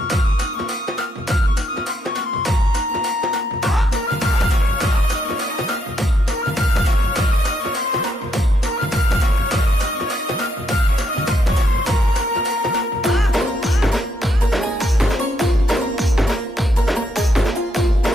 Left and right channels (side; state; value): both; normal; correlation 0.76